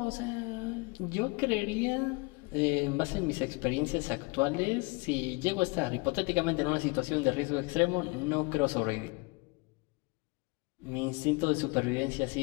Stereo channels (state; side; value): quieter; right; 27.3 dB